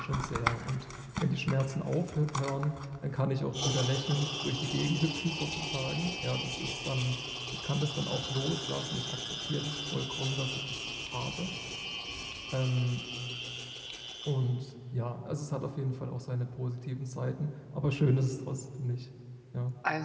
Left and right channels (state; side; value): identical; both; correlation 1.00